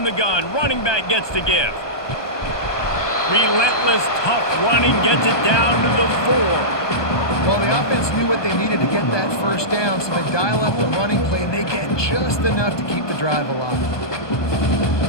the gun, running back gets to give. Relentless, tough running gets it down to the 4. Well, the offense knew what they needed to get that first down, so they dial up the running play, and they get just enough to keep the drive alive.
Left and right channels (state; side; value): late; right; 1.2 ms